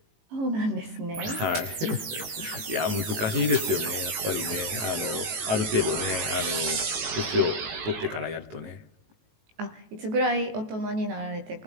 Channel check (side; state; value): left; late; 18 ms